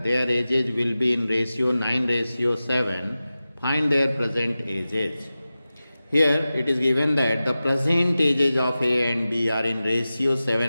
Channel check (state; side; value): inverted; both; correlation -0.95